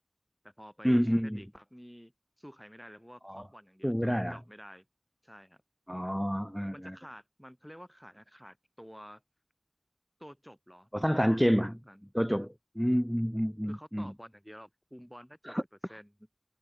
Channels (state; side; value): identical; both; correlation 1.00